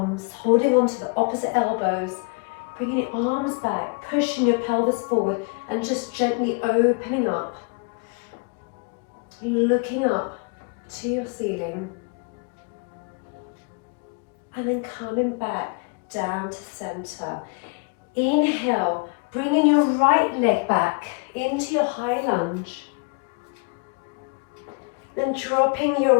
holding on to the opposite elbows, bringing your arms back, pushing your pelvis forward, and just gently opening up, looking up to your ceiling. and then coming back down to center. Inhale, bringing your right leg back into your high lunge. Then dropping your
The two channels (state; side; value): quieter; right; 33.2 dB